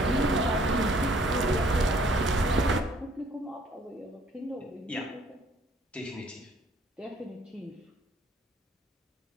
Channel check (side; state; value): both; normal; correlation 0.60